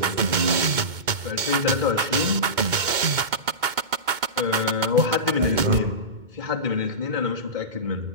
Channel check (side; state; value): left; late; 2.2 ms